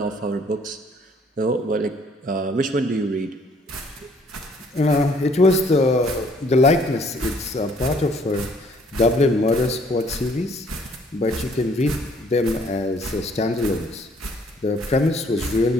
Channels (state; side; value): normal; both; correlation 0.61